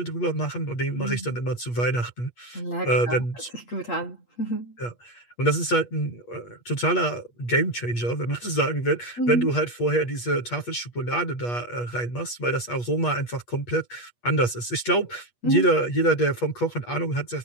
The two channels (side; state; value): right; late; 8.4 ms